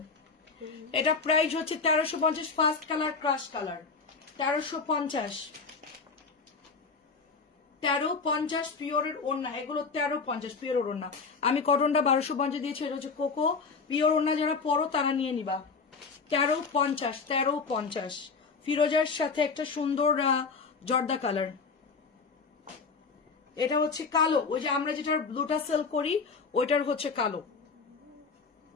এটা প্রাইস হচ্ছে 1350, ফার্স্ট কালার ক্রাশ কালার, 1350। 1350 পিওরের ওড়না, এগুলো 1350 পিওরের ওড়না। আমি কটনটা 1250 দিয়েছি, এটা হচ্ছে কোকো। পিওর ওড়না যারা পরো তারা নিয়ে নিবা। 1350, 1350। ফিরোজার সাথে একটা সুন্দর জর্দা কালার। এটা হচ্ছে কালো, ওই যে আমরা যেটার ব্লুটা সেল করি ওইটার হচ্ছে কালো।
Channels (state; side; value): quieter; right; 4.8 dB